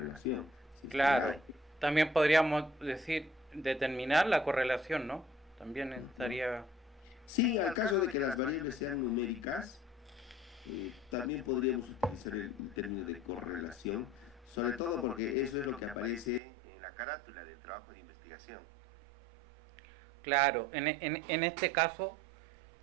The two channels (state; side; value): drops out; left; at 16.4 s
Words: Si claro, también podríamos decir determinar la correlación, ¿no? También estaría... Sí, al caso de que las variables sean numéricas, también podríamos utilizar el término de correlación, sobre todo porque eso es lo que aparece en la carátula del trabajo de investigación. Claro, en este caso,